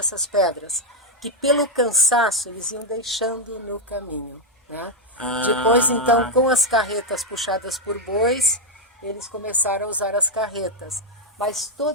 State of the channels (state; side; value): normal; both; correlation 0.02